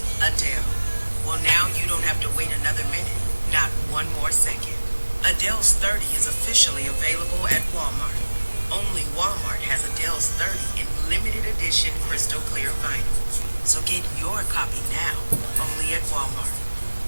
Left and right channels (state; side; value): inverted; both; correlation -1.00